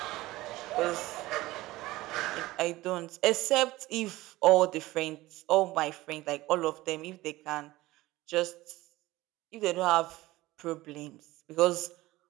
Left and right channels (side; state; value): left; quieter; 18.4 dB